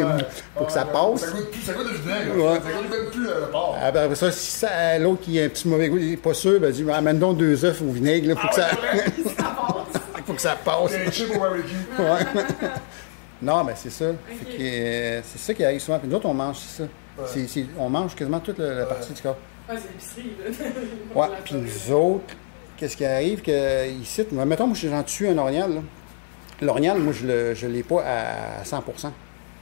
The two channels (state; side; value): silent; right; 63 dB below the other